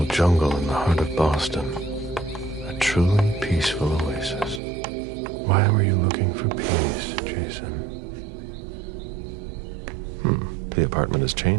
jungle in the heart of Boston. A truly peaceful oasis. Why were you looking for peace, Jason? The apartment has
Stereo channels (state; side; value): drops out; left; at 4.6 s